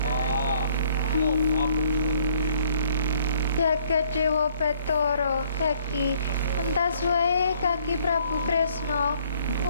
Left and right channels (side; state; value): both; inverted; correlation -0.62